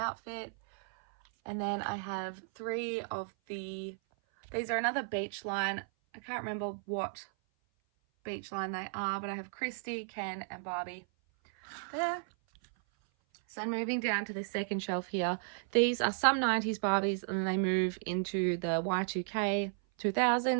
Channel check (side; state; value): left; silent; 55 dB below the other